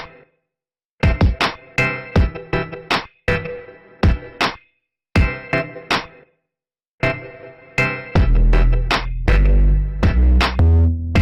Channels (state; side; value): identical; both; correlation 1.00